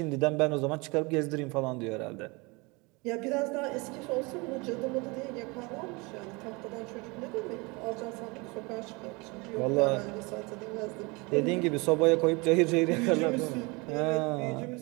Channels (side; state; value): left; quieter; 26.8 dB